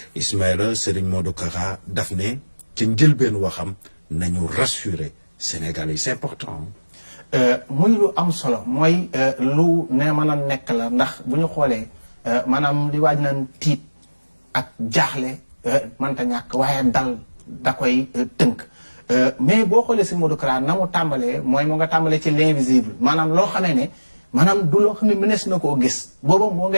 Ismaïla Serigne Modou Kara daf ne ci njëlbeen waxam nañu rassurer Sénégalais, c'est important. muy lu am solo mooy lu ne mën a nekk la ndax bu ñu xoolee maanaam li waaj naan tiit ak jaaxle mënta ñàkk waaye dal da koy tënk mais boo xoolee si Modou Kara na mu tàmbalee mooy mu nga tàmbalee ci l'invisible maanaam loo xamee ne maanaam du loo xam ne mënees na koo gis booba moo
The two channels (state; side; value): inverted; both; correlation -1.00